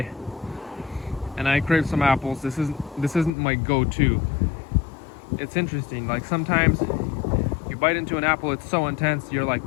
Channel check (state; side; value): drops out; right; at 3.3 s